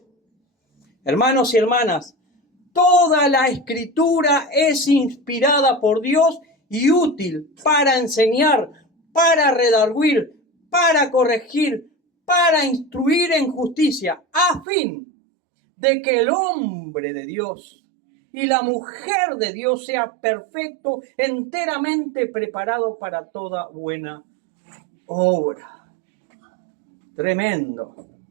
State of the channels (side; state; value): left; drops out; at 14.7 s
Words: Hermanos y hermanas, toda la Escritura es inspirada por Dios y útil para enseñar, para redarguir, para corregir, para instruir en justicia, a fin de que el hombre de Dios y la mujer de Dios sea perfecto, enteramente preparado para toda buena obra. Tremendo,